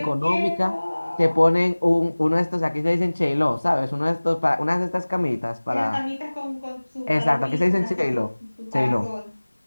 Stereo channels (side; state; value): both; inverted; correlation -1.00